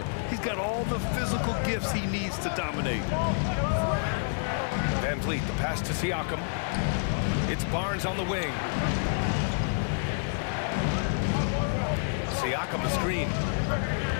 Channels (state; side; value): silent; right; digital silence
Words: He's got all the physical gifts he needs to dominate. VanVleet, the pass to Siakam. It's Barnes on the wing. Siakam the screen.